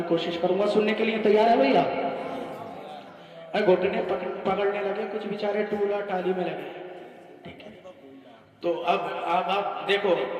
کوشش کروں گا۔ سننے کے لیے تیار ہے بھیا؟ گھٹنے پکڑنے لگے، کچھ بیچارے ٹولا ٹالی میں لگے، ٹھیک ہے؟ تو اب آپ دیکھو،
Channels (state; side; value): identical; both; correlation 1.00